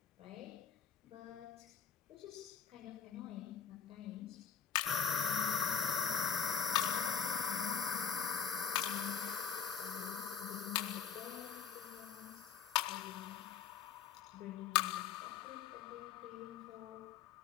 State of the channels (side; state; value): right; quieter; 7.2 dB